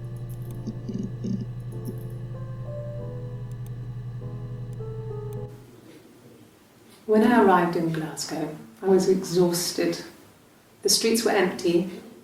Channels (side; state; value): both; identical; correlation 1.00